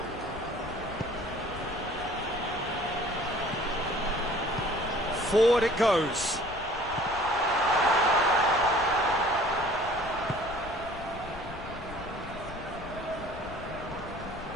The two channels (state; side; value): noise; left; rumble, 14 dB below the sound